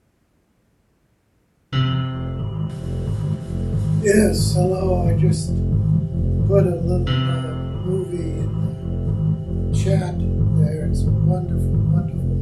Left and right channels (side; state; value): both; identical; correlation 1.00